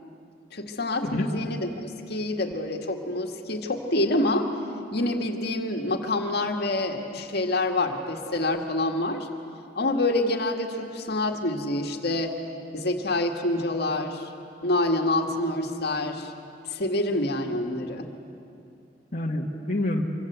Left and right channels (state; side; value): normal; both; correlation 0.14